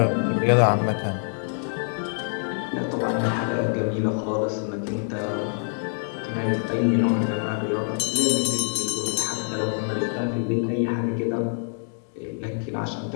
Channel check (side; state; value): right; silent; 62 dB below the other